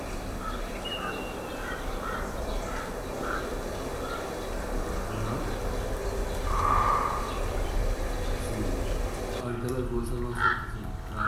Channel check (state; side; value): identical; both; correlation 1.00